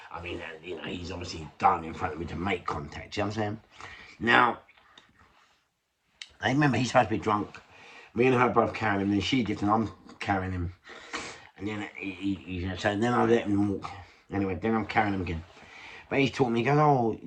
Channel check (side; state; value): both; identical; correlation 1.00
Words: I mean, you know, he's obviously done in front of me to make contact, you know what I'm saying? Now, I remember he's supposed to be drunk. Me and her both carrying him, and she did, and I'm carrying him. And then so then I let him walk. Anyway, then I'm carrying him again. But he's taught me, he goes, oh,